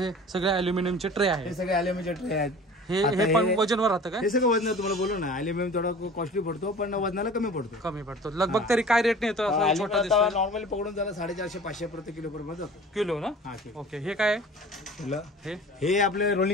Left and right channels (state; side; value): normal; both; correlation 0.42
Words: सगळे अल्युमिनियमचे ट्रे आहेत. हे सगळे अल्युमिनियमचे ट्रे आहेत. हे पण वजनवर राहतं का? हे सगळं वजन तुम्हाला बोलू ना, अल्युमिनियम थोडा कॉस्टली पडतो पण वजनाला कमी पडतो. लगभग तरी काय रेट येतो? नॉर्मली पकडून झाला 450-500 प्रति किलो पर्यंत जातो. किलो ना? ओके. हे काय? हे आपले